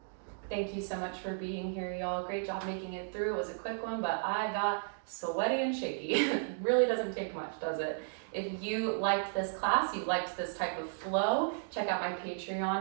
Thank you so much for being here, y'all. Great job making it through. It was a quick one, but I got sweaty and shaky. It really doesn't take much, does it? If you liked this class, you liked this type of flow, check out my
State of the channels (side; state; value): left; silent; digital silence